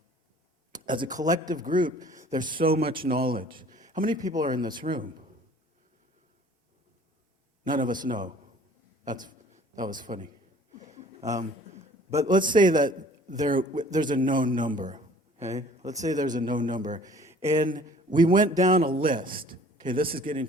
As a collective group, there's so much knowledge. How many people are in this room? None of us know. That was funny. But let's say that there's a known number. Okay? Let's say there's a known number. And we went down a list. Okay, this is getting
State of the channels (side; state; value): both; normal; correlation 0.52